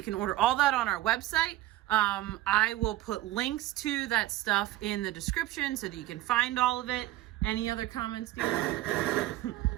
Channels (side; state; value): left; quieter; 15.9 dB